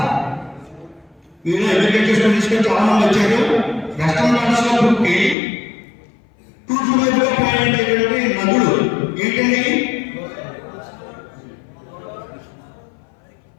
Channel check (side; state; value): right; drops out; at 5.4 s